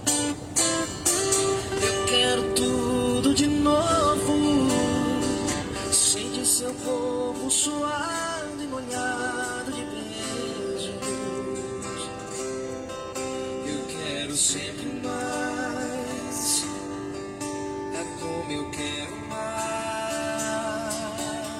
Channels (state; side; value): identical; both; correlation 1.00